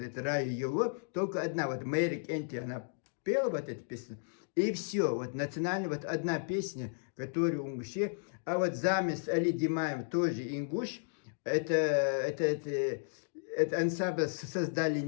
это Рая Юло, только одна, вот Мэрик Энти, она пела вот эту песню, и все, вот национальная, вот одна песня, которая у ингушей, а вот замес Али Димаев тоже ингуш, это ансамбль создали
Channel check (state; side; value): silent; right; digital silence